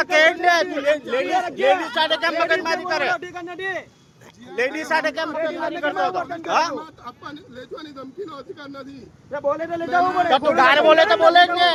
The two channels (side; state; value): both; identical; correlation 1.00